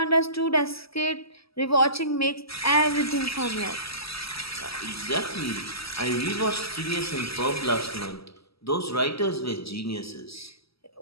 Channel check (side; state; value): right; late; 0.76 ms